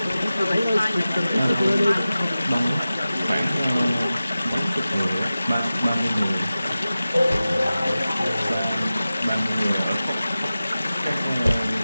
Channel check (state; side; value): inverted; both; correlation -0.95